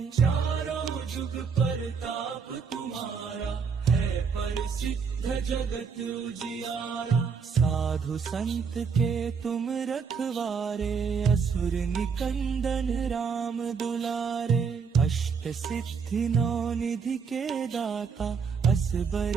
चारों जुग परताप तुम्हारा, है परिसिद्ध जगत उजियारा। साधु संत के तुम रखवारे, असुर निकंदन राम दुलारे। अष्ट सिद्धि नौ निधि के दाता, असबर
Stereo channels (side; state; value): left; quieter; 5.9 dB